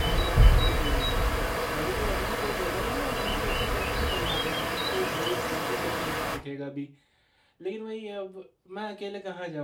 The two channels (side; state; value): both; identical; correlation 1.00